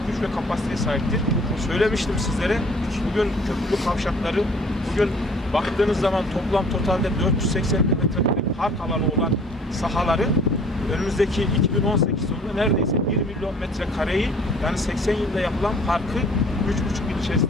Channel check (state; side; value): normal; both; correlation 0.53